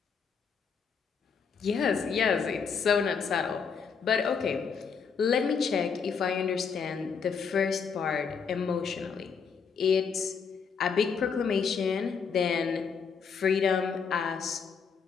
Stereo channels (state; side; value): quieter; right; 6.1 dB